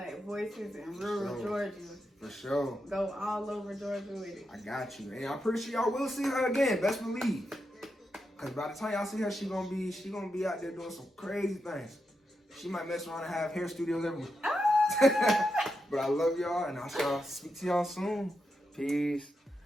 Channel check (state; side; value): normal; both; correlation 0.86